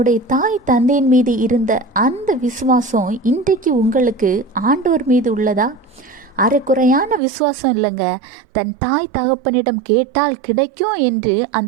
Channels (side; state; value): left; drops out; at 7.2 s